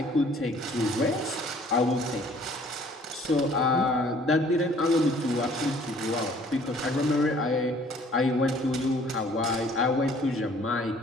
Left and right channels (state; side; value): normal; both; correlation 0.56